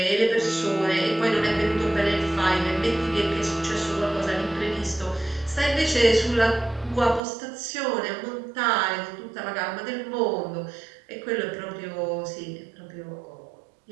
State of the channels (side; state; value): left; drops out; at 7.2 s